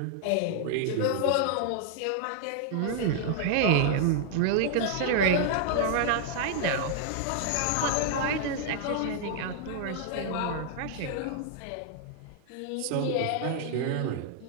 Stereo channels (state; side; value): different; both; correlation 0.00